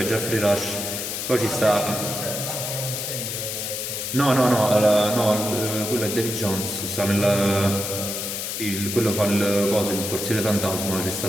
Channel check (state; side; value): noise; left; hiss, 4 dB below the sound